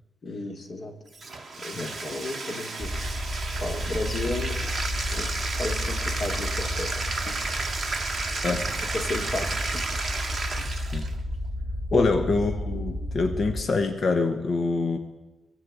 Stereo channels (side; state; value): both; normal; correlation 0.83